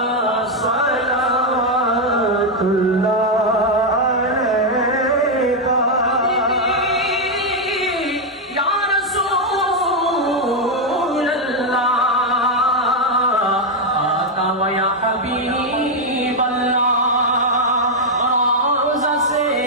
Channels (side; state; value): both; normal; correlation 0.02